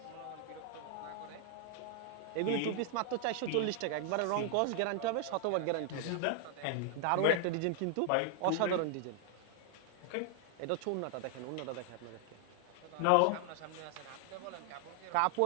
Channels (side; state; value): both; different; correlation 0.00